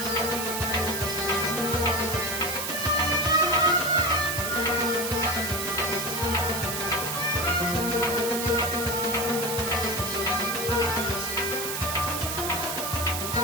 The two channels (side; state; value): right; noise; hiss, 3 dB below the sound